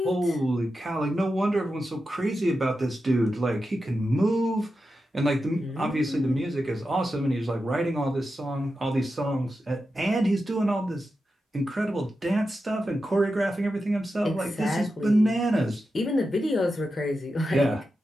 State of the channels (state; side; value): normal; both; correlation 0.90